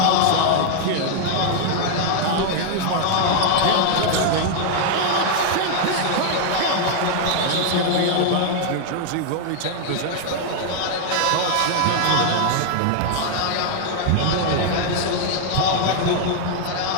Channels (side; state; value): both; different; correlation 0.00